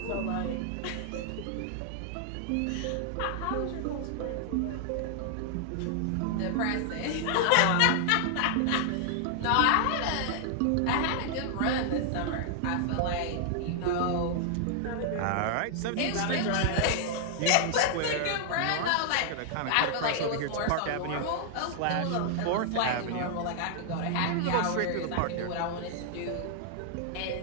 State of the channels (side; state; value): both; different; correlation 0.00